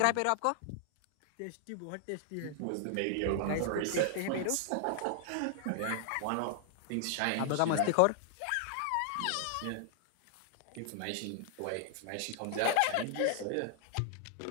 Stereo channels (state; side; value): different; both; correlation 0.00